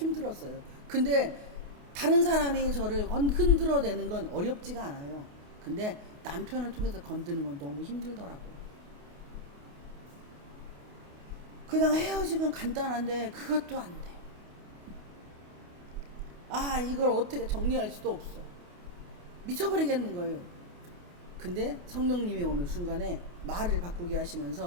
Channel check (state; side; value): late; left; 28 ms